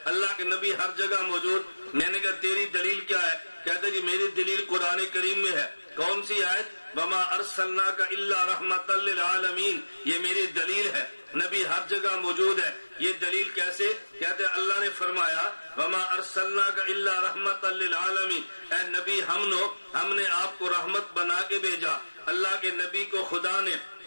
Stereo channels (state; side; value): inverted; both; correlation -1.00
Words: اللہ کے نبی ہر جگہ موجود، میں نے کہا تیری دلیل کیا ہے؟ کہتے جی میری دلیل قرآن کریم میں ہے۔ کون سی آیت؟ وما ارسلناک الا رحمۃ للعالمین، یہ میری دلیل ہے، نبی ہر جگہ موجود ہے۔ یہ دلیل کیسے؟ کہتے ہیں اللہ نے فرمایا وما ارسلناک الا رحمۃ للعالمین، اے نبی ہم نے آپ کو رحمت بنا کے بھیجا۔ اللہ کے نبی کو خدا نے